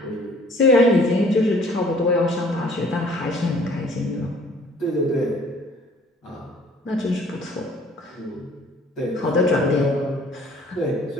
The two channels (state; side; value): normal; both; correlation 0.55